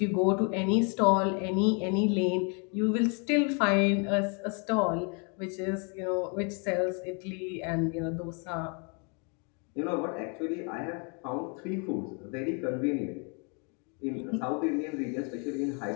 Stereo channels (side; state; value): right; quieter; 35.9 dB